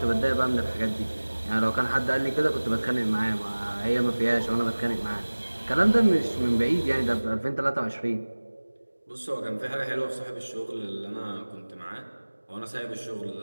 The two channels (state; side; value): inverted; both; correlation -1.00